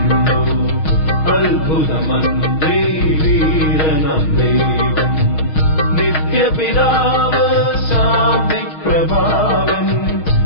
അത്ഭുതമന്ത്രി വീരനാം ദൈവം. നിത്യപിതാവ് ശാന്തിപ്രഭാവൻ,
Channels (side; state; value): right; late; 6.3 ms